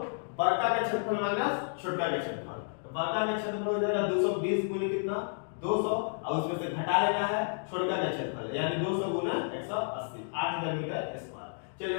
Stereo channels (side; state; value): right; silent; digital silence